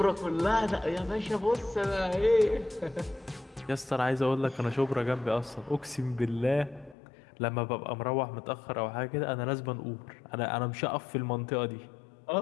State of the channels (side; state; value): right; drops out; at 7.0 s